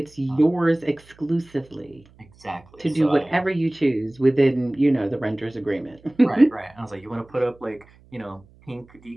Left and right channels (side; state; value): right; noise; hum, 27 dB below the sound